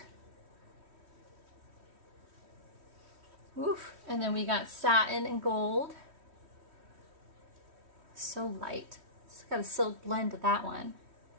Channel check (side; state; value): left; late; 3.1 ms